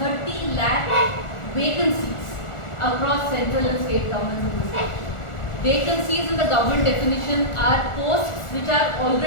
lakh vacancies across central and state governments in this country. Vacancies in the government definition are posts which are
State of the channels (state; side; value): late; right; 1.4 ms